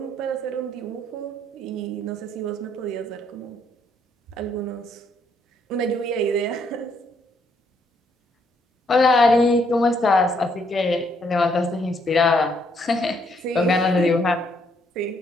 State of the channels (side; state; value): both; normal; correlation 0.71